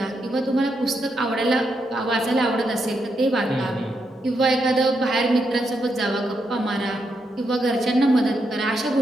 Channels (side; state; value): both; normal; correlation 0.81